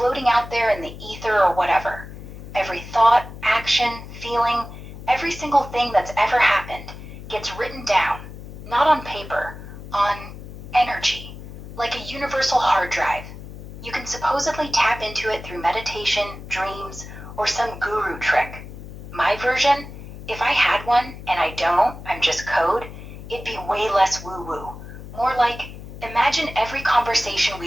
out there in the ether or whatever. Every thought, action, feeling, every single thing that's ever happened gets written down, not on paper, on energy, like a universal hard drive. You can supposedly tap into it through meditation, dreams, or some guru trick. My version, if I had one and I don't, I'm just code, it'd be way less woo woo. More like, imagine every conversation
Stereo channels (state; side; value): noise; left; hum, 13 dB below the sound